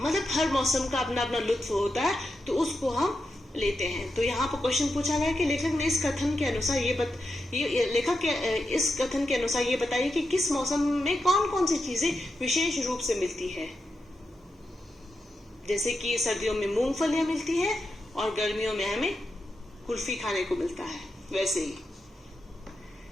हर मौसम का अपना अपना लुत्फ होता है, तो उसको हम लेते हैं। तो यहाँ पर क्वेश्चन पूछा गया कि लेखक ने इस कथन के अनुसार इस कथन के अनुसार ये बताइए कि किस मौसम में कौन कौन सी चीजें विशेष रूप से मिलती है। जैसे कि सर्दियों में मूंगफलियां मिलती है और गर्मियों में हमें कुल्फी खाने को मिलता है। वैसे ही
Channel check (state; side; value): normal; both; correlation 0.87